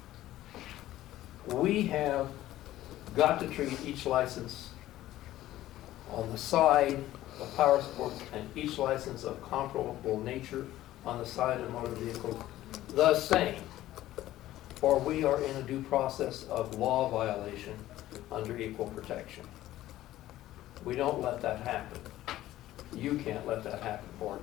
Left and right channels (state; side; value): quieter; right; 14.7 dB